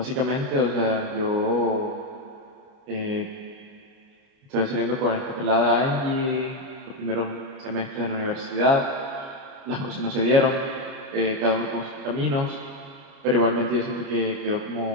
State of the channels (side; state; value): left; late; 29 ms